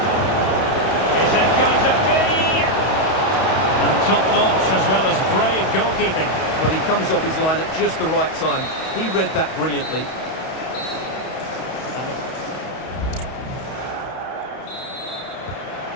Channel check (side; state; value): right; late; 31 ms